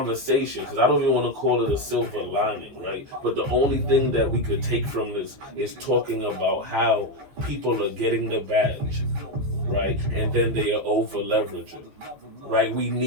because I don't even want to call it a silver lining, right? But the only thing that we could take from this is talking about how people are getting the badge, right? And then they are over leveraging, right? We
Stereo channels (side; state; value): left; late; 14 ms